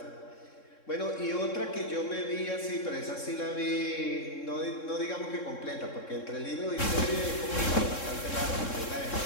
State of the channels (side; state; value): right; late; 3.7 ms